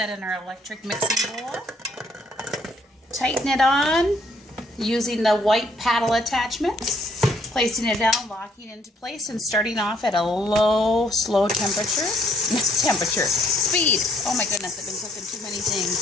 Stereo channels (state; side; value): normal; both; correlation 0.66